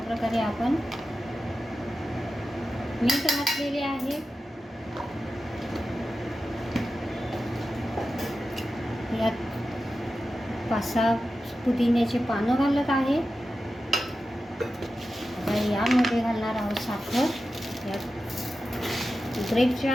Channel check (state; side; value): normal; both; correlation 0.92